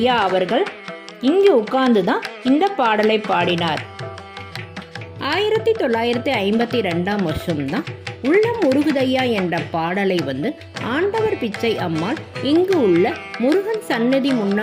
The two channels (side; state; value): both; identical; correlation 1.00